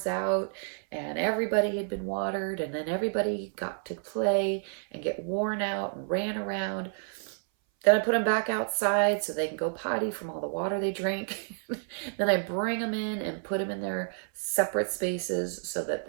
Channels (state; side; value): silent; left; 58 dB below the other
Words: out, and everybody had been watered, and then everybody got to play and get worn out and ran around. Then I put them back outside so they can go potty from all the water they drink. Then I bring them in and put them in their separate spaces so that